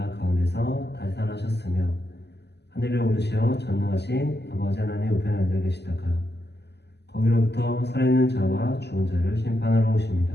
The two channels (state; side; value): late; right; 0.49 ms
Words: 가운데서 다시 살아나셨으며 하늘에 오르시어 전능하신 아버지 하나님 우편에 앉아 계시다가 거기로부터 살아있는 자와 죽은 자를 심판하러 오십니다.